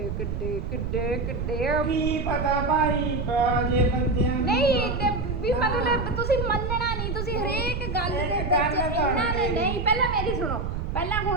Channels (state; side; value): noise; right; rumble, 3 dB below the sound